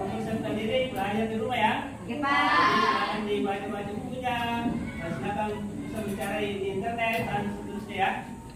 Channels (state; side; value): identical; both; correlation 1.00